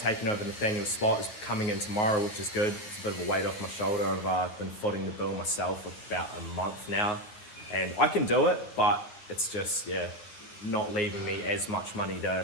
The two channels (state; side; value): late; right; 9.8 ms